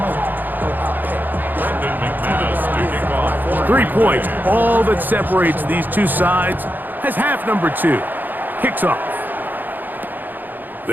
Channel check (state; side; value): late; left; 0.088 ms